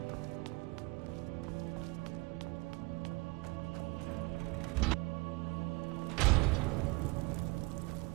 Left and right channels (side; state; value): left; quieter; 26.2 dB